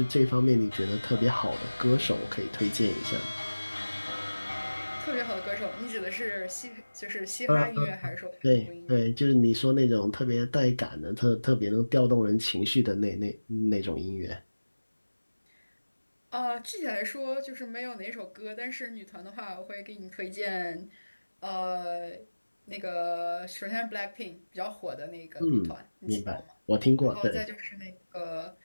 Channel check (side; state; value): both; inverted; correlation -1.00